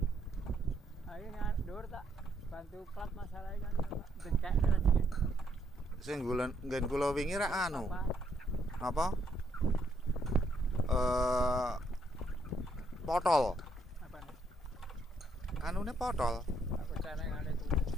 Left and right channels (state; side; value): normal; both; correlation 0.72